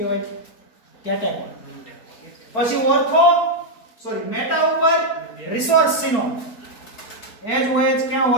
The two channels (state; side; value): late; right; 4.5 ms